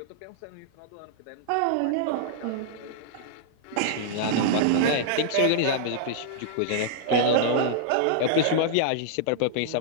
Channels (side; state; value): both; different; correlation -0.01